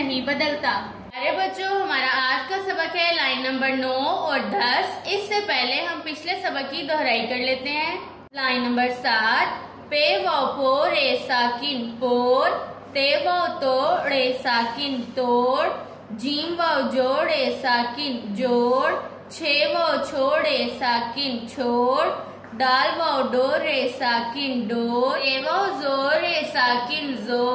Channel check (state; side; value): identical; both; correlation 1.00